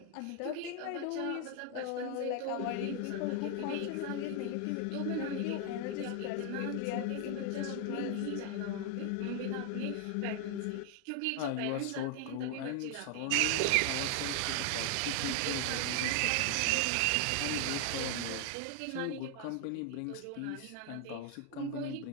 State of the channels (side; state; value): both; different; correlation 0.00